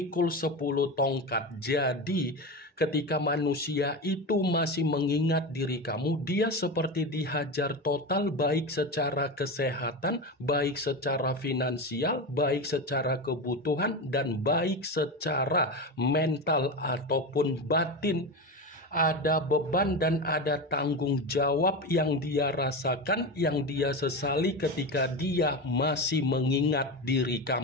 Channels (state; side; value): normal; both; correlation 0.20